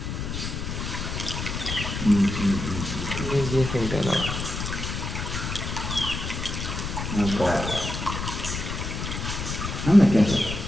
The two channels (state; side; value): noise; left; rumble, 4 dB below the sound